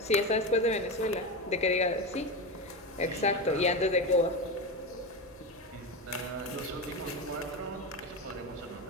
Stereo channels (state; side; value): normal; both; correlation 0.19